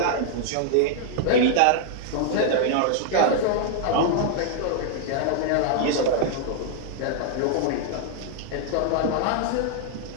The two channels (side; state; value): both; different; correlation -0.01